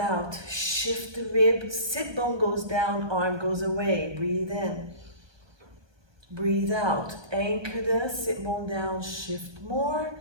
shift the rib, sit bone goes down, arm goes away. Breathe in, breathe out, anchor the sit bone down, shift more.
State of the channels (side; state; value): left; late; 1.3 ms